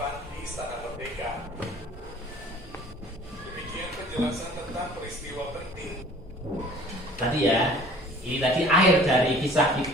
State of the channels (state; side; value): normal; both; correlation 0.50